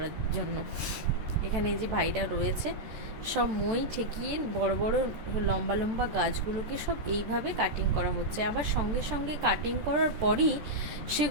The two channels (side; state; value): left; late; 14 ms